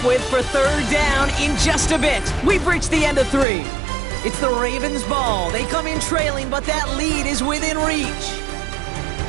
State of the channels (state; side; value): drops out; left; at 3.5 s